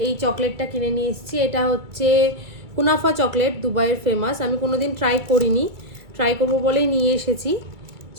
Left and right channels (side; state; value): left; late; 2.3 ms